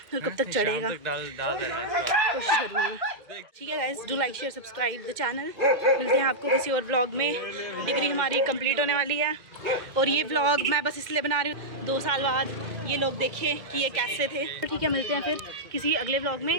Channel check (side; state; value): left; late; 2.1 ms